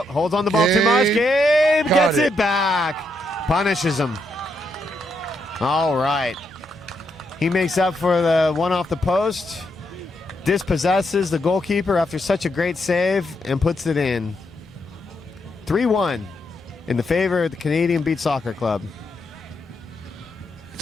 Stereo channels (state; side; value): normal; both; correlation 0.79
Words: holds on the ball too Gabe much. Gabe got gets it. it back. Punishes him. All right. He makes up for the one off the post, dispossesses the goalkeeper after such a great save, and puts it in. 3-1 in the favor of the Canadian Beach Soccer Club.